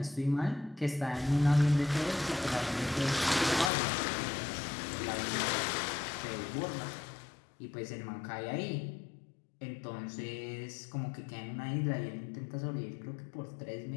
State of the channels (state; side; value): drops out; right; at 3.7 s